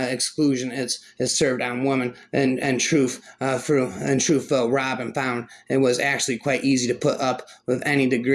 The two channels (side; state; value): both; identical; correlation 1.00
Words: exclusion. It's served on women, and truth though Robin found it was actually quite easy to put up with any